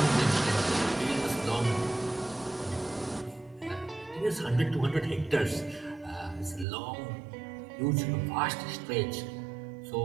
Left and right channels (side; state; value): left; drops out; at 6.7 s